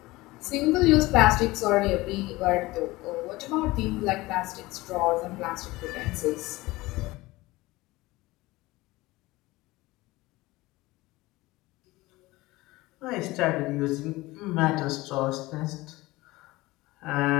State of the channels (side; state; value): right; quieter; 20.0 dB